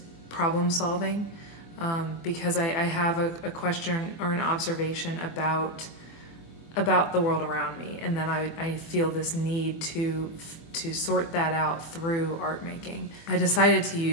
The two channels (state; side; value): late; right; 24 ms